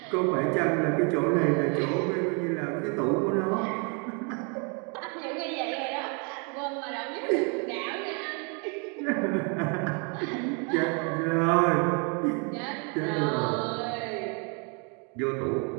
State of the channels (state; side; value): quieter; left; 35.6 dB